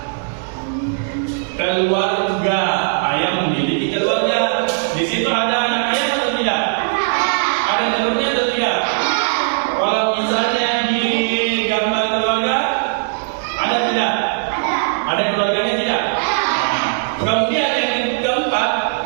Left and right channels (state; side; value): silent; left; digital silence